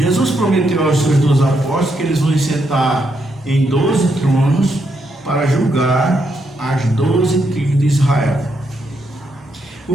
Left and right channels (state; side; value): normal; both; correlation 0.79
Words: prometeu aos seus 12 apóstolos que eles vão sentar em 12 tronos para julgar as 12 tribos de Israel.